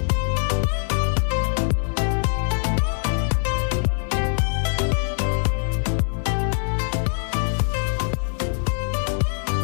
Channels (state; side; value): silent; right; 57 dB below the other